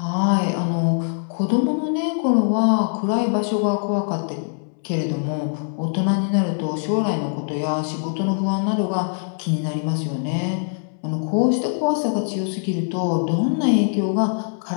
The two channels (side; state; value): right; silent; 64 dB below the other